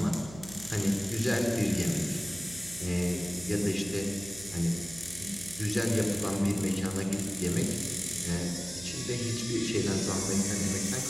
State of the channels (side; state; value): right; noise; hum, 16 dB below the sound